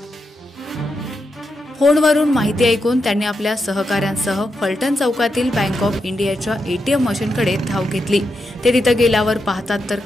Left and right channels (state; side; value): normal; both; correlation 0.85